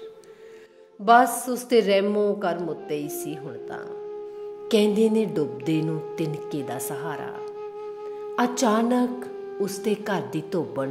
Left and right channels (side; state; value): both; identical; correlation 1.00